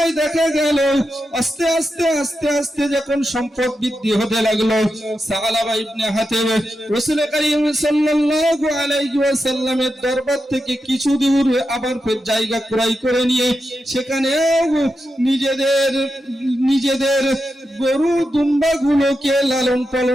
দেখা গেল আস্তে আস্তে যখন সম্পদ বৃদ্ধি হতে লাগলো, সাআলাবা ইবনে হাতিব রাসূল করিম সাল্লাল্লাহু আলাইহি ওয়াসাল্লামের দরবার থেকে কিছু দূর আবার ফের জায়গা ক্রয় করে নিয়ে সেখানে নিজেদের গরু দুম্বা গুলোকে লালন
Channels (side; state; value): both; normal; correlation 0.88